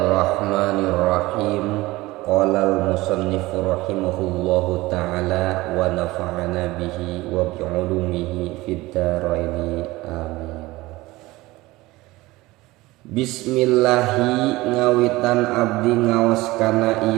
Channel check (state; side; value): quieter; left; 19.7 dB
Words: Qala al-musannifu rahimahullahu ta'ala wa nafa'ana bihi wa bi'ulumihi fid dharaini amin. Bismillahi ngawitan abdi ngaos kana